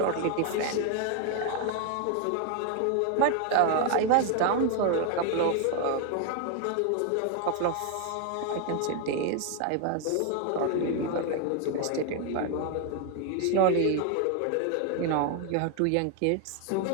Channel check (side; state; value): both; different; correlation 0.00